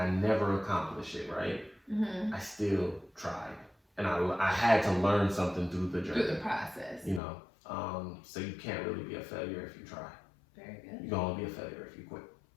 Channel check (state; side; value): drops out; right; at 7.2 s